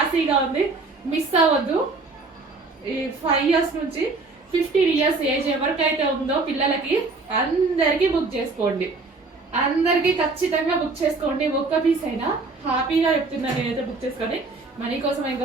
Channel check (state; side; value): quieter; left; 3.7 dB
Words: ఉంది. మిస్ అవ్వద్దు. ఈ 5 years నుంచి 15 years ఏజ్ ఎవరికైతే ఉందో పిల్లలకి అందరికి బుక్ చేసుకోండి. అందరికి ఖచ్చితంగా బుక్ చేసుకోండి. ఒక్క పీస్ అయినా హ్యాపీగా చెప్తున్నా నేనైతే బుక్ చేసుకోండి. మనీ కోసం